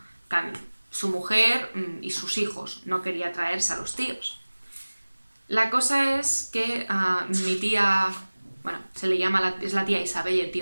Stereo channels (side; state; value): both; inverted; correlation -1.00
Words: Su mujer y sus hijos, no quería traerse a los tíos. La cosa es que mi tía, bueno, se le llama, es la tía Isabel y el